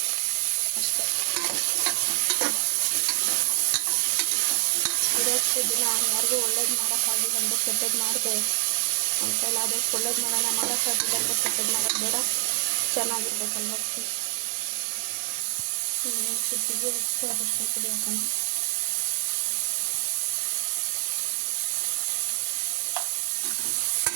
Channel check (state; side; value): silent; left; digital silence